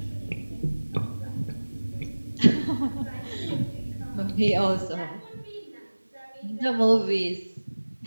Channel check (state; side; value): inverted; both; correlation -1.00